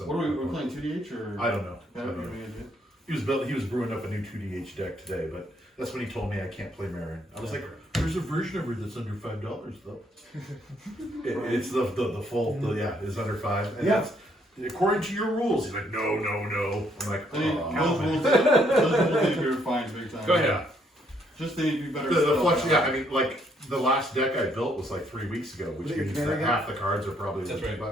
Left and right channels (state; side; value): normal; both; correlation 0.69